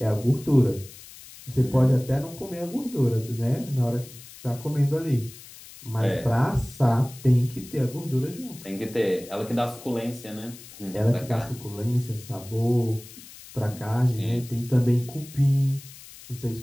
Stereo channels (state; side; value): noise; left; hiss, 18 dB below the sound